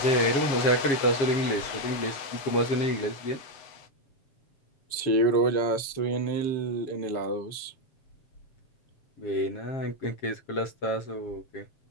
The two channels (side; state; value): right; late; 7.9 ms